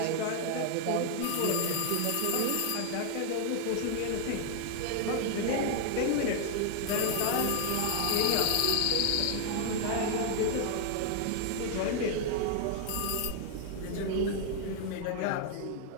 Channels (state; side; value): different; both; correlation 0.00